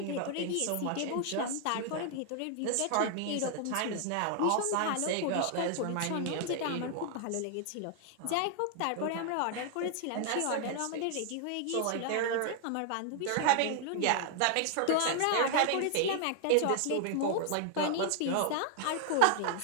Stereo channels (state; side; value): different; both; correlation 0.00